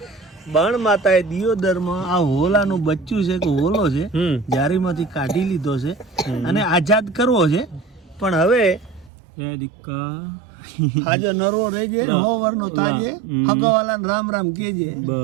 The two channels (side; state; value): left; drops out; at 9.1 s